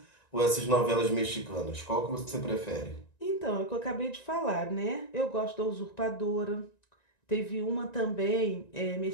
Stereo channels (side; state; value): right; late; 1.9 ms